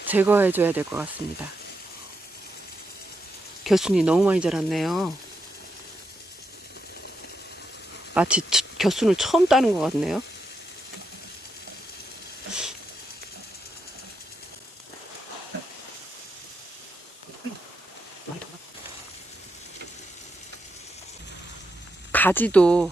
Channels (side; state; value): both; normal; correlation 0.84